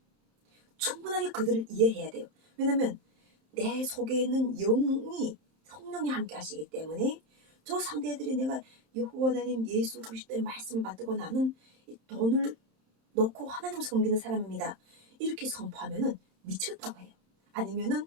충분하게 그들을 이해해야 돼요. 왜냐면 내 속에 있는 영이 성령이 함께 하시기 때문에 저 상대들이 내가 여호와 하나님 예수 그리스도의 말씀을 받고 나는 돈을 놓고 하나님을 섬기는 사람입니다 이렇게 선포하면은 미쳤다고 해요. 아니면은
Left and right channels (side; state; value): left; late; 27 ms